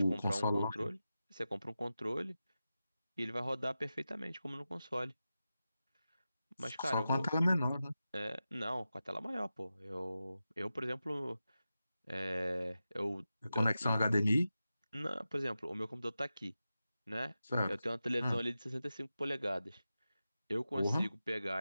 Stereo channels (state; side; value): inverted; both; correlation -0.92